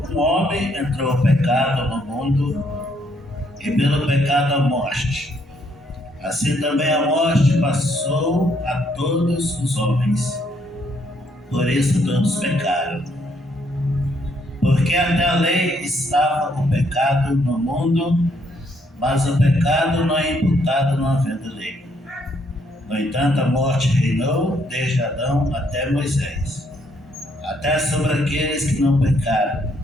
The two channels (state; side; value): normal; both; correlation 0.71